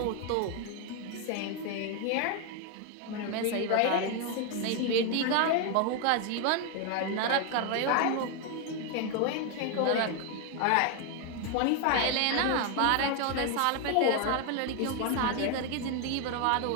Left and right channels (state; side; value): different; both; correlation 0.01